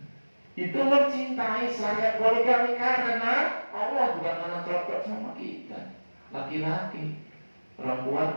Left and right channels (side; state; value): both; inverted; correlation -1.00